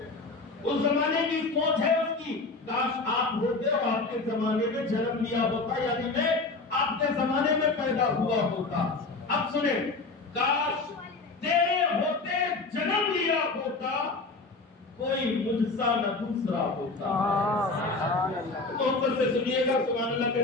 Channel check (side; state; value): right; quieter; 3.7 dB